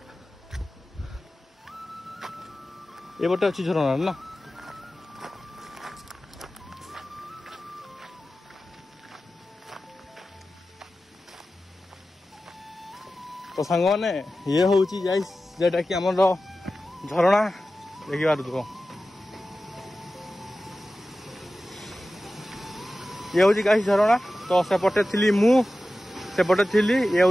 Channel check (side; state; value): both; normal; correlation 0.94